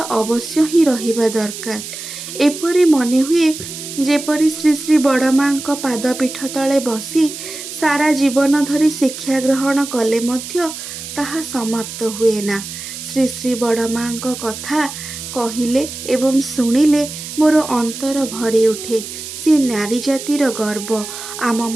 ही रहिबा दरकार। एपरि मने हुए जेपरि श्री श्री बड़मांक पादपीठ तले बसी सारा जीवन धरी शिक्षा ग्रहण कले मध्य ताहा समाप्त हुए ना। श्री श्री बड़मांक कथा कहिले एवं शुणिले मोर अंतर भरी उठे। से नारी जातिर गर्व, आम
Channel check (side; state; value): right; noise; hiss, 10 dB below the sound